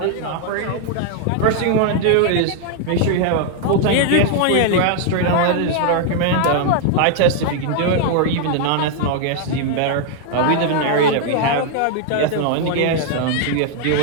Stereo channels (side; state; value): both; different; correlation 0.00